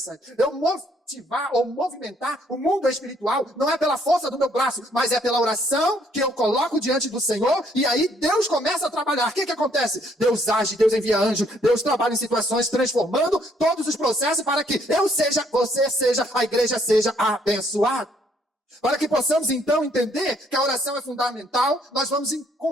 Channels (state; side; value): normal; both; correlation 0.67